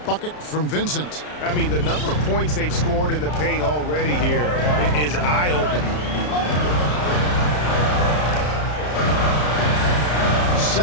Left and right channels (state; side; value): late; right; 33 ms